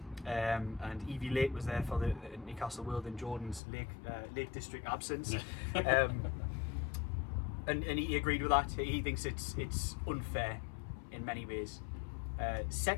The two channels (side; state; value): right; drops out; at 3.6 s